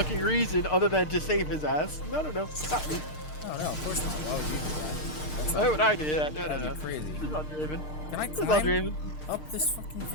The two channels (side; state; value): right; late; 6.6 ms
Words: reason other than to save his ass. No, not me. Why would I do that? No. This is not Draven. This is not Draven. Up this fucking